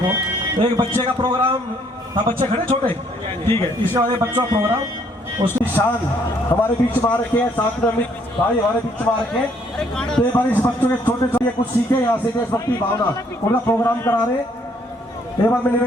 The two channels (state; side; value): normal; both; correlation 0.66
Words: बहुत। एक बच्चे का प्रोग्राम, हाँ बच्चे खड़े छोटे, ठीक है, इसके बाद बच्चों का प्रोग्राम, उसकी शान हमारे बीच में आ रखे हैं, साथ में अमित भाई हमारे बीच में आ रखे हैं। तो एक बार इस बच्चों के छोटे कुछ सीखे यहाँ से देशभक्ति भावना, उनका प्रोग्राम करा रहे। एक बार मैं